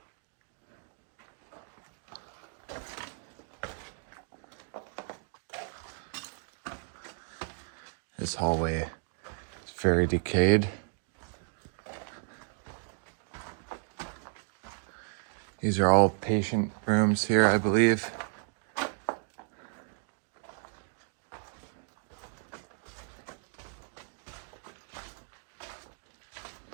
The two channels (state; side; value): silent; left; digital silence